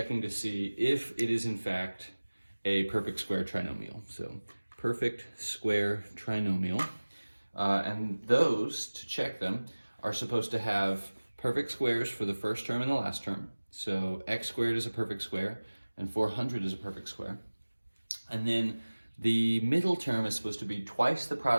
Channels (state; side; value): inverted; both; correlation -1.00